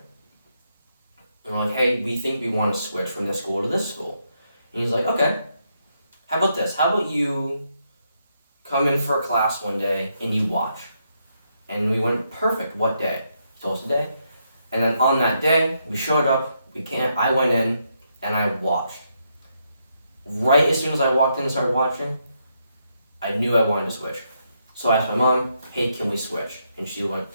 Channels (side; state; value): both; inverted; correlation -0.79